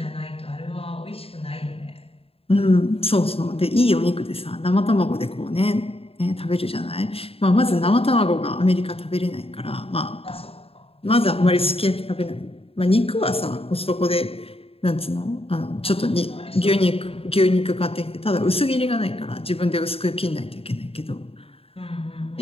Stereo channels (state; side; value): late; right; 0.28 ms